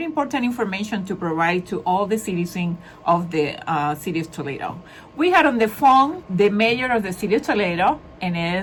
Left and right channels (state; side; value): identical; both; correlation 1.00